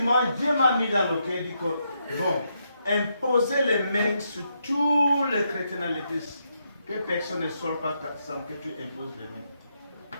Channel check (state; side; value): inverted; both; correlation -0.80